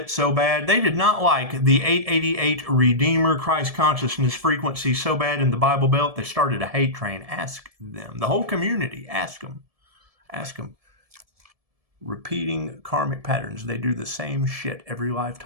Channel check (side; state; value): left; late; 1.7 ms